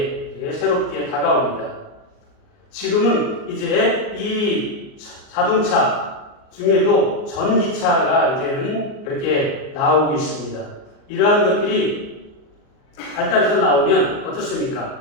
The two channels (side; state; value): right; late; 38 ms